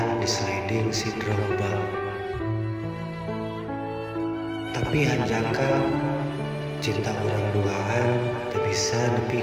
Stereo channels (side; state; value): both; identical; correlation 1.00